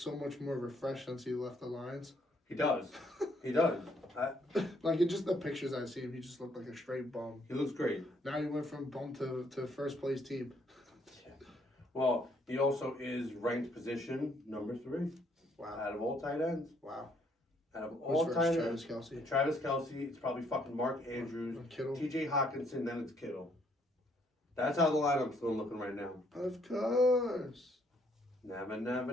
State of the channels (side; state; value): both; normal; correlation 0.68